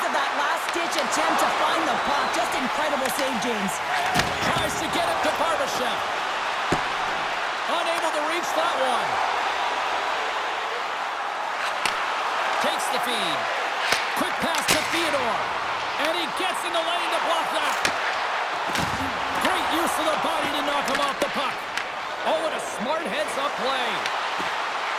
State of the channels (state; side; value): identical; both; correlation 1.00